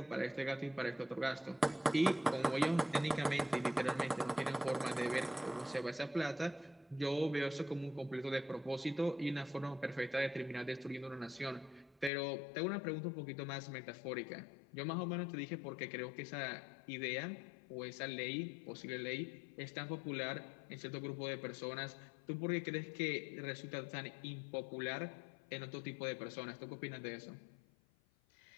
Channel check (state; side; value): drops out; right; at 12.1 s